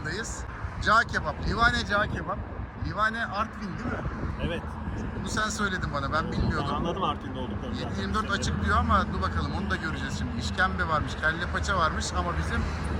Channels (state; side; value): identical; both; correlation 1.00